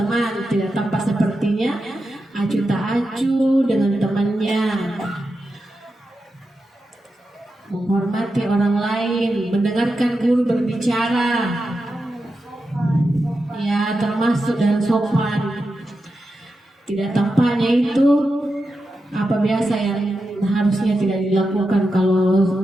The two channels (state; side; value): normal; both; correlation 0.89